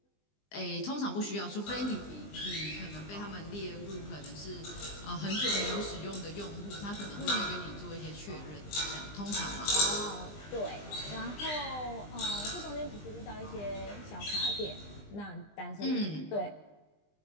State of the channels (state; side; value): late; right; 20 ms